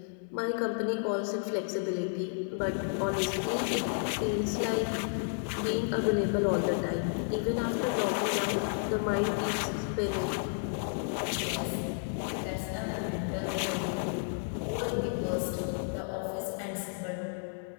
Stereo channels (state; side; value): silent; right; 57 dB below the other